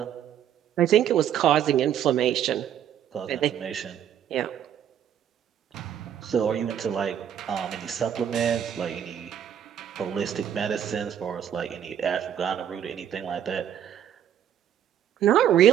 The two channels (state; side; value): quieter; left; 9.8 dB